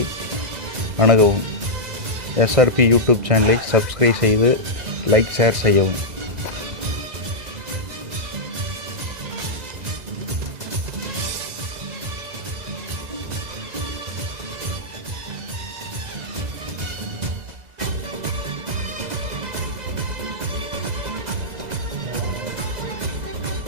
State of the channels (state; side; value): late; left; 2.0 ms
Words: அணுகவும். SRP யூடியூப் சேனலை சப்ஸ்கிரைப் செய்து லைக் ஷேர் செய்யவும்.